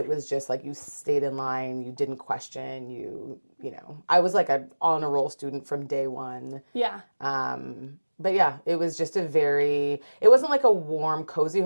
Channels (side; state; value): both; inverted; correlation -1.00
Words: was just like you stayed in line, you didn't question, I was like a on a roll student from day one. Yeah. But yeah, it was just it wasn't like a warm, cozy